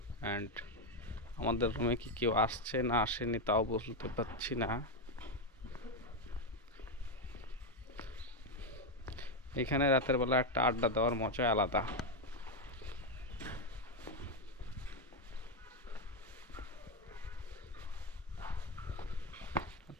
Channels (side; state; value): both; normal; correlation 0.06